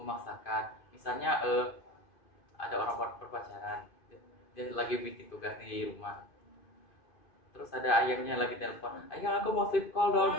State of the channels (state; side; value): late; right; 2.5 ms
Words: Misalnya ada orang berpacaran, dia lagi bikin tugas di rumah. Terus ada ayahnya lagi telepon, ayah aku mau sleep call dong